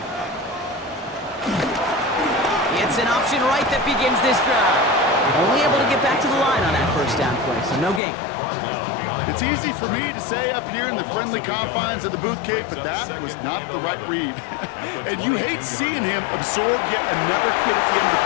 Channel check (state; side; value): drops out; right; at 8.0 s